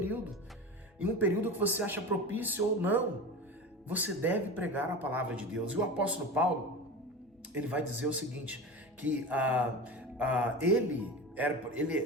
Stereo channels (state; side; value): normal; both; correlation 0.28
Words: em um período que você acha propício ou não, você deve pregar a palavra de Deus. E o apóstolo Paulo, ele vai dizer o seguinte, que